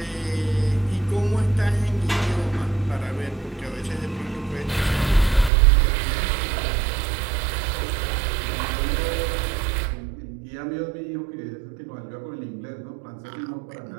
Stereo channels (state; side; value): drops out; left; at 5.5 s